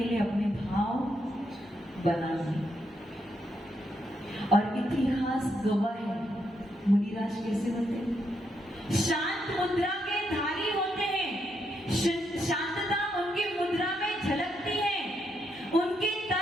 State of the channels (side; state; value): both; normal; correlation 0.79